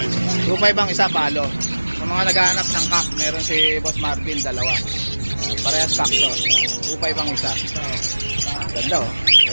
2.5 ang isa, palo. Sa mga naghahanap ng cock, meron si Boss Marvin, dalawa. Parehas cock to. 2.5 ang isa. Ganda oh.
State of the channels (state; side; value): inverted; both; correlation -1.00